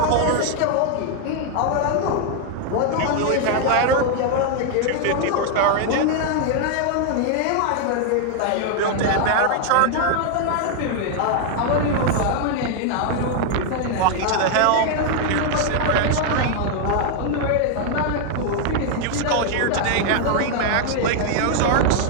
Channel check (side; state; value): both; different; correlation 0.00